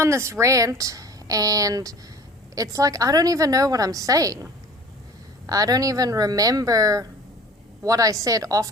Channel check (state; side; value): normal; both; correlation 0.45